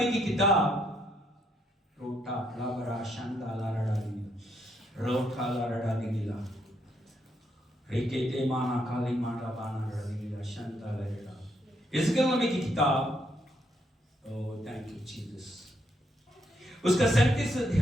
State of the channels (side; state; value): both; normal; correlation 0.75